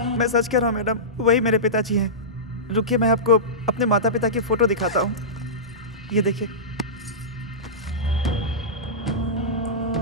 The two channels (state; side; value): normal; both; correlation -0.17